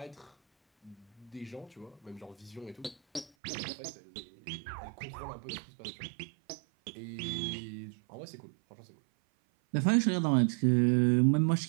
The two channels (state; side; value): drops out; left; at 3.3 s